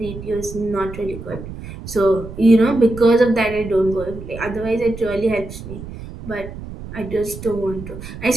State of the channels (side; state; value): right; noise; rumble, 12 dB below the sound